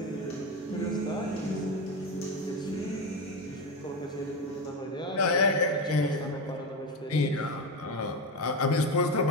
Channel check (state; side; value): normal; both; correlation 0.16